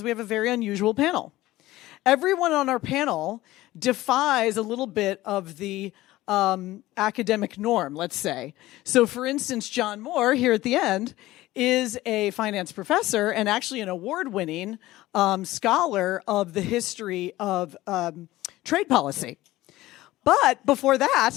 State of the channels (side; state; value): right; quieter; 17.0 dB